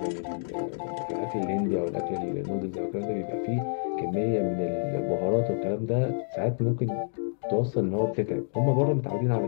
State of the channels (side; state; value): right; silent; digital silence